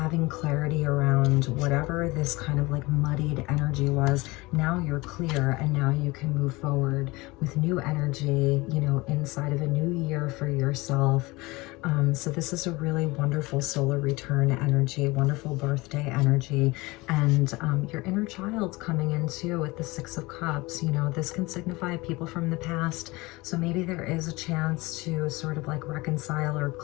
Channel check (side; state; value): right; quieter; 22.5 dB